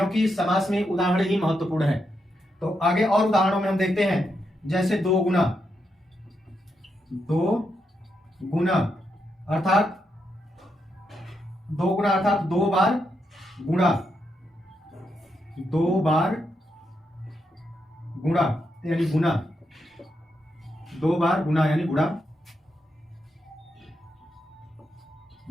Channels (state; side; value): normal; both; correlation 0.82